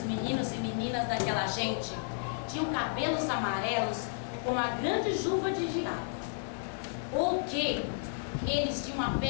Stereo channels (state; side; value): silent; right; digital silence